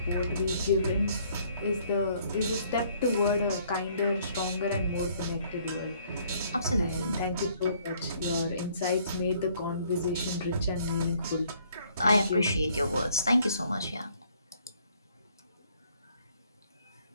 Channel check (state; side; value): inverted; both; correlation -0.64